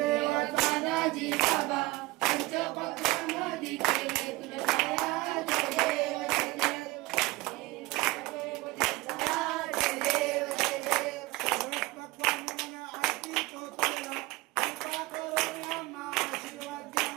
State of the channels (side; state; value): left; quieter; 20.7 dB